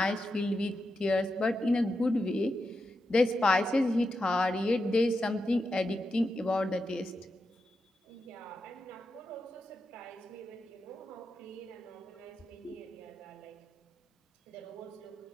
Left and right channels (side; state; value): both; normal; correlation 0.88